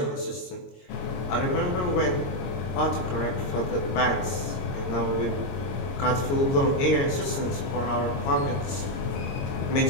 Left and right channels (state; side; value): late; right; 22 ms